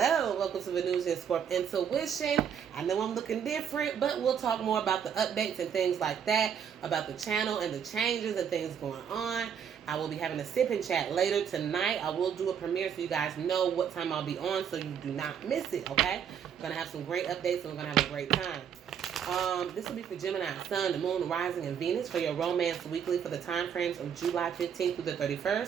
welcome to Venusianscorp Intuition. I know I'm looking different, but we'll talk more about the updates and things like that, about the channel and the changes and things going on. I will be having a sip and chat later tonight. I will do a premiere so you guys know what time I'll be on so you do not miss it, okay? I'm going to have some great updates and we're going to have a great time. This will be for Gemini, Sun, the Moon, Rising, and Venus for your romance weekly for the time frames of July 15th through the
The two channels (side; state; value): left; quieter; 8.1 dB